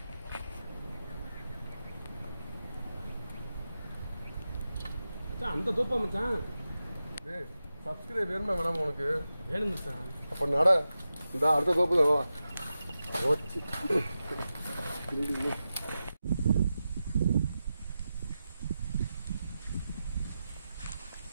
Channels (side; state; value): both; inverted; correlation -0.91